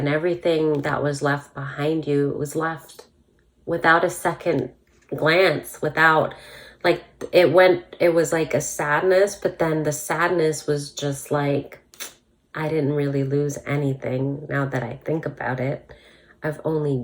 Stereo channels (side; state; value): both; identical; correlation 1.00